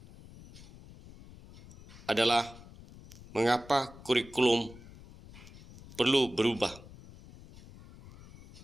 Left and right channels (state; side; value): noise; left; rumble, 19 dB below the sound